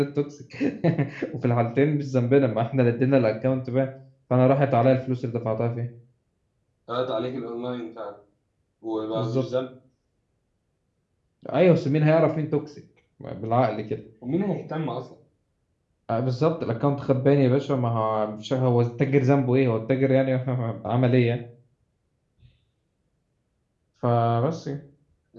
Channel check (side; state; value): both; identical; correlation 1.00